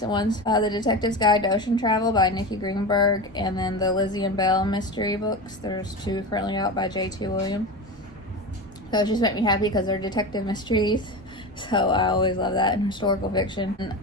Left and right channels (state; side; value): normal; both; correlation 0.24